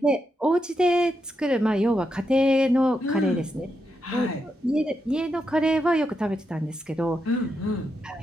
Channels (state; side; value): normal; both; correlation 0.84